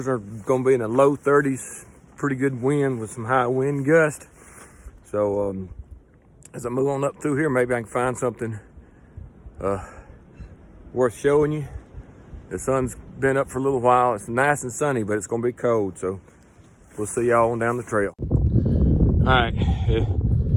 are going to be in the low 30s. Pretty good wind with some high wind gust. So as I move on up through here, maybe I can find something worth showing you. The sun's been up for a little while. It's nice and sunny, but it's going to be cold. So we'll see y'all on down the trail. All right,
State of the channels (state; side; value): identical; both; correlation 1.00